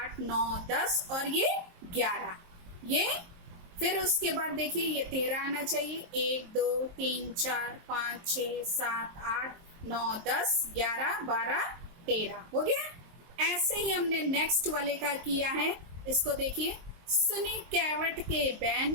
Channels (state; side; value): late; left; 23 ms